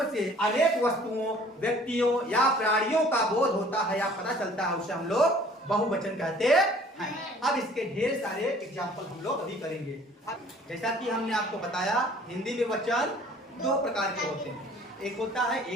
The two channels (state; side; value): normal; both; correlation 0.53